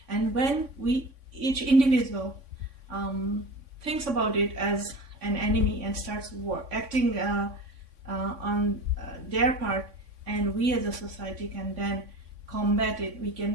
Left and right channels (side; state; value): left; late; 3.6 ms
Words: And when each individual thinks about it as an enemy and starts acting on their part, and we as a society can then combat it, we can